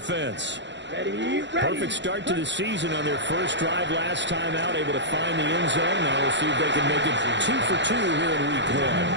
Ready. Perfect start to the season on their first drive last time out, able to find the end zone. Now we'll see if they can make it 2 for 2 here in week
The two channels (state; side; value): late; left; 0.52 ms